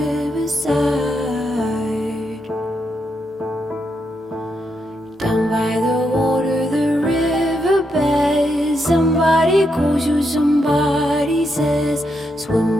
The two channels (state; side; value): normal; both; correlation 0.81